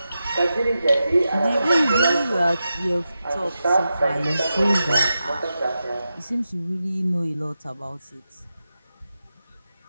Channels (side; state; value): both; inverted; correlation -0.90